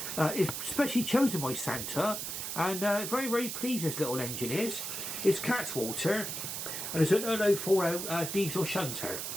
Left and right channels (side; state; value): right; noise; hiss, 5 dB below the sound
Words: is specially chosen by Santa, and very, very pleased this little engine is. It's Cattewater, and it's an 0040 diesel Shunter.